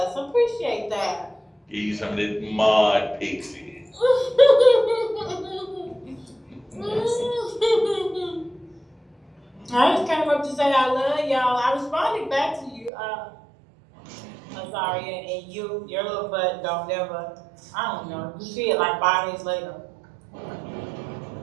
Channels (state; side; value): drops out; left; at 12.9 s